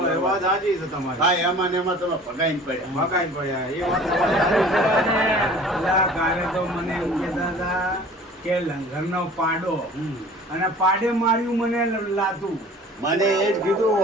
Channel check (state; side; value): normal; both; correlation 0.46